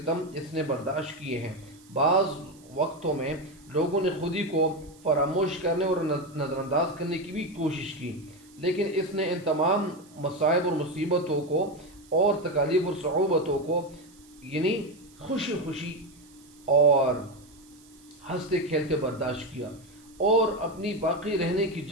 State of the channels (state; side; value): noise; right; hiss, 26 dB below the sound